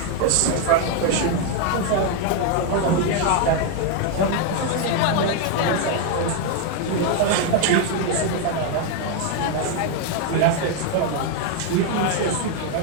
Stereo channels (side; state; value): both; different; correlation 0.01